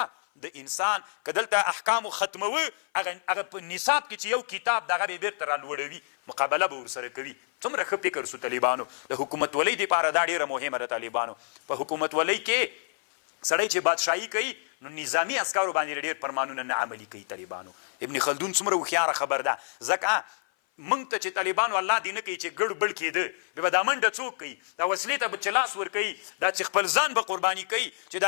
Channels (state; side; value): silent; right; 56 dB below the other